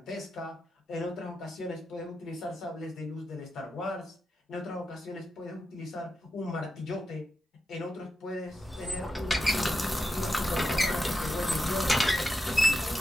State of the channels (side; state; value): both; normal; correlation 0.89